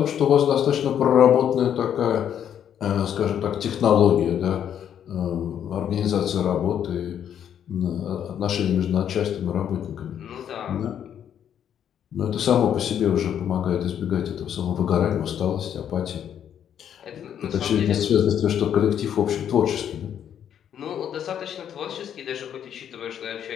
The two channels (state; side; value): quieter; right; 9.3 dB